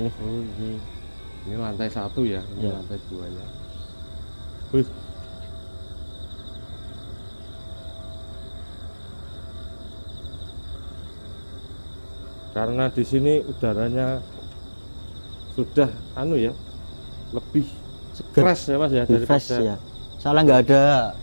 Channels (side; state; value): both; inverted; correlation -1.00